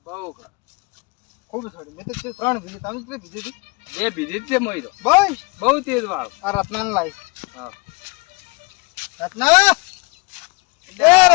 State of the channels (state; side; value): quieter; right; 27.5 dB